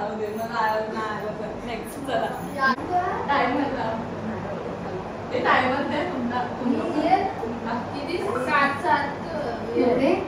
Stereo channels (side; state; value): both; identical; correlation 1.00